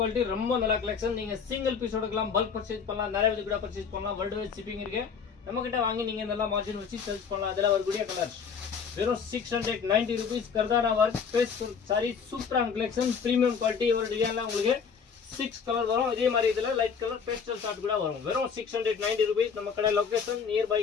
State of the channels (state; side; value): quieter; right; 6.3 dB